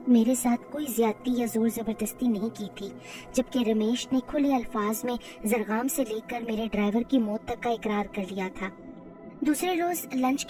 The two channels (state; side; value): identical; both; correlation 1.00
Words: मेरे साथ कोई ज्यादती या जोर जबरदस्ती नहीं की थी, जबकि रमेश ने खुले अल्फाज में जरगाम से लेकर मेरे ड्राइवर की मौत तक का इकरार कर लिया था। दूसरे रोज लंच